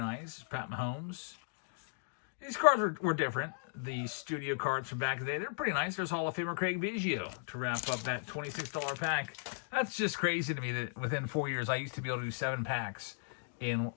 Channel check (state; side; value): silent; right; digital silence